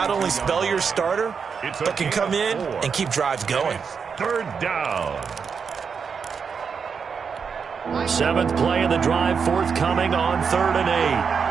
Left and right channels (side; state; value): left; quieter; 6.1 dB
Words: only spell your starter, but can come in and keep drives going. 3rd down. 7th play of the drive, forthcoming on 3rd and